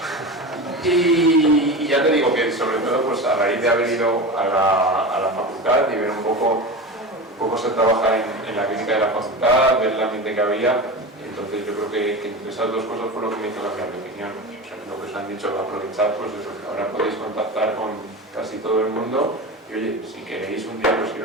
Y ya te digo que sobre todo pues a raíz de haber ido a la facultad y ver un poco se trabaja en la clínica de la facultad, ver el ambiente que había, entonces yo creo que entre esas dos cosas fue lo que me hizo cambiar de opinión. O sea, lo que os han dicho, aprovechar, pues eso, que ahora podéis contactar con casi todo el mundo y oye, si queréis un día pues ir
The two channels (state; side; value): normal; both; correlation 0.27